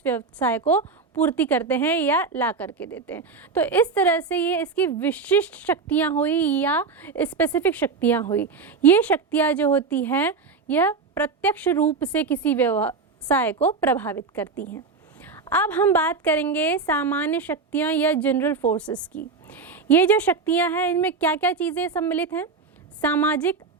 व्यवसाय को पूर्ति करते हैं या ला करके देते हैं। तो इस तरह से ये इसकी विशिष्ट शक्तियाँ हुई या स्पेसिफिक शक्तियाँ हुई। ये शक्तियाँ जो होती हैं यह प्रत्यक्ष रूप से किसी व्यवसाय को प्रभावित करती हैं। अब हम बात करेंगे सामान्य शक्तियाँ या जनरल फोर्सेस की। ये जो शक्तियाँ हैं इनमें क्या क्या चीज़ें सम्मिलित हैं? सामाजिक,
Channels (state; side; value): quieter; left; 4.7 dB